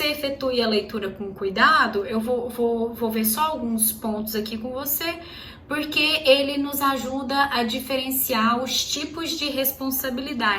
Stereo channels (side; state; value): both; identical; correlation 1.00